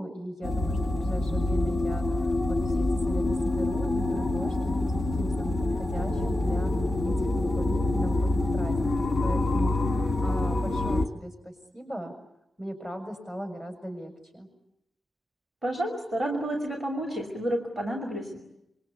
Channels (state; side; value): normal; both; correlation 0.90